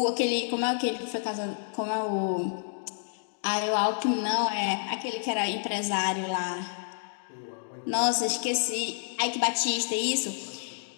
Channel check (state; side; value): silent; right; digital silence